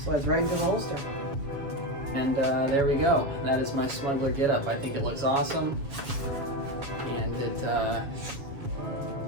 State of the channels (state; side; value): late; left; 7.1 ms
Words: slides right into the holster. And there we go. That is my smuggler getup. I think it looks awesome. And it, I